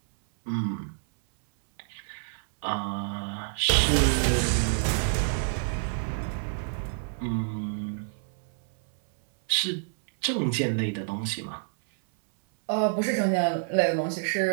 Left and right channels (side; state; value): left; silent; 60 dB below the other